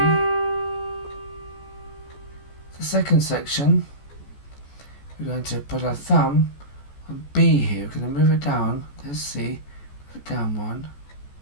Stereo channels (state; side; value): late; right; 14 ms